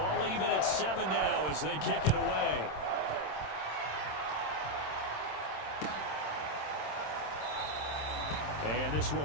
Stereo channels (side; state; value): right; late; 26 ms